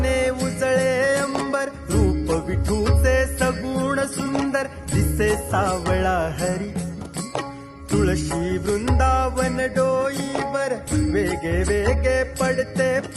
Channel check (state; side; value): identical; both; correlation 1.00